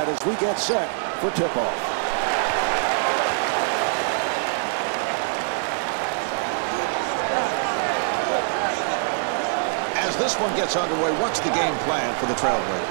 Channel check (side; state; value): left; silent; digital silence